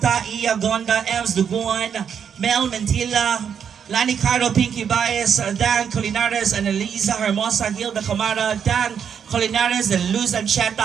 Iya Gonda, Ems Duguan, Mel Mentila, Lani Caro, Pinky Baez, Dan Colinares, Annalisa Hermosa, Hilda Camara, Dan Colinares, and Luz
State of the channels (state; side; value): quieter; left; 7.6 dB